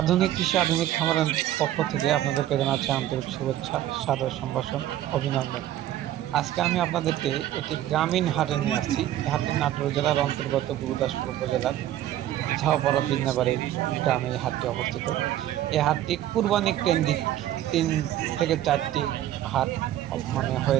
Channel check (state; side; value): quieter; left; 12.9 dB